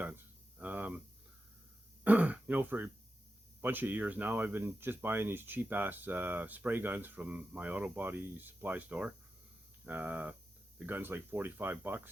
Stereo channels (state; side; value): normal; both; correlation 0.90